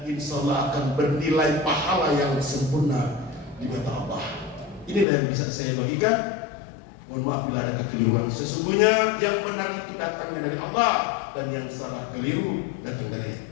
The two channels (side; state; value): right; drops out; at 5.1 s